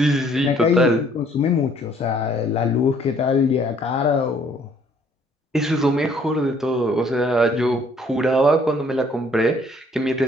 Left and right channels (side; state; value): both; normal; correlation 0.61